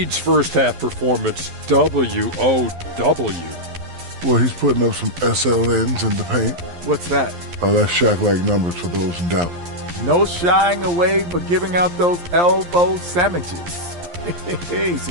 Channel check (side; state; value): left; late; 11 ms